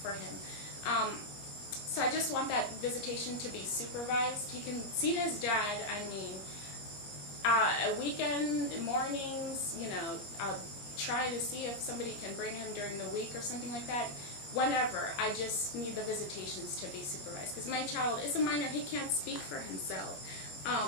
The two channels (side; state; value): right; late; 21 ms